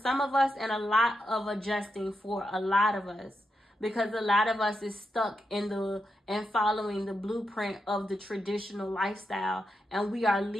of us and a lot of adjusting for a lot of us, because a lot of us is stuck in and following the blueprint of the traditional lifestyle, and we are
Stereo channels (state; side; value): normal; both; correlation 0.86